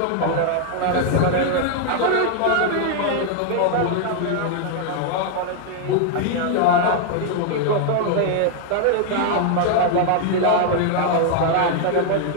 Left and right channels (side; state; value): both; different; correlation 0.00